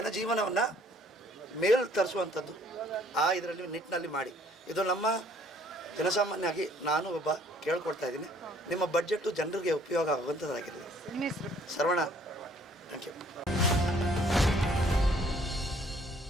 ಮೇಲ್ ತರಿಸುವಂಥದ್ದು ಇದರಲ್ಲಿ ನಿಟ್ಟಿನಲ್ಲಿ ಮಾಡಿ. ಇದು ನಮ್ಮ ಜನಸಾಮಾನ್ಯವಾಗಿ ನಾನು ಒಬ್ಬ ಕೇಳ್ಕೊಳ್ತಾ ಇದ್ದೀನಿ. ನಿಮ್ಮ ಬಡ್ಜೆಟ್ಟು ಜನರಿಗೆ ಉಪಯೋಗ ಆಗುವಂಥದ್ದಾಗಿರಲಿ. Saravana, thank you.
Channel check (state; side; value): normal; both; correlation 0.60